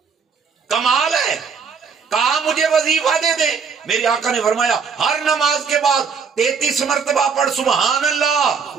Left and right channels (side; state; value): left; quieter; 5.9 dB